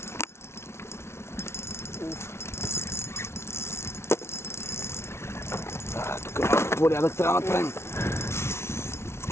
Тук малко порядък трябва да направим.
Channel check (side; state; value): right; late; 0.13 ms